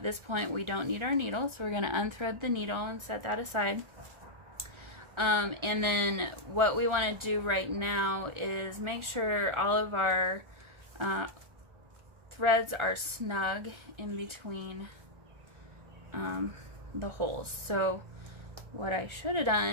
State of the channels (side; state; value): left; late; 1.4 ms